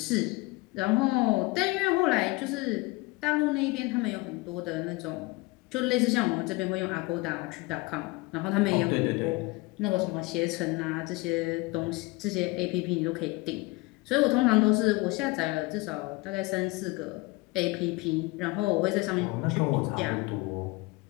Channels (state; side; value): quieter; right; 23.6 dB